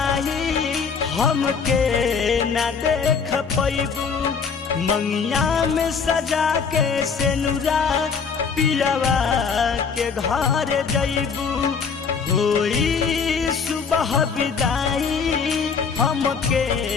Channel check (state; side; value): quieter; right; 5.8 dB